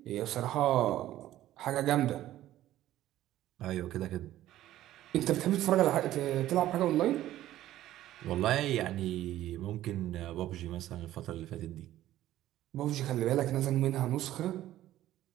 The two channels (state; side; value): quieter; left; 13.8 dB